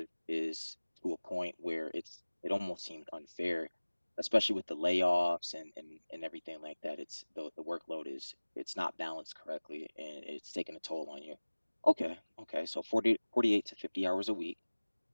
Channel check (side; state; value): both; inverted; correlation -1.00